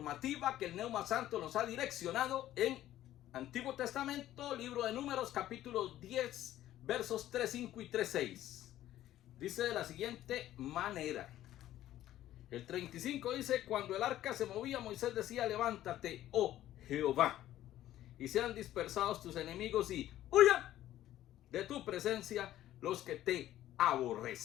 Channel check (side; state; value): right; quieter; 13.3 dB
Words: que el Neuma Santo nos ha direccionado en Antiguo Testamento, libro de Números, capítulo 10, versos 3.5 y 3.6. Dice de la siguiente manera. El 35 dice: cuando el arca se movía, Moisés decía: levántate, oh Jehová, y sean dispersados tus enemigos y huyan de tu presencia los que te